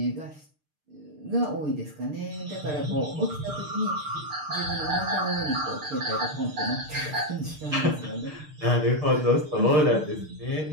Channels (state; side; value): late; left; 6.6 ms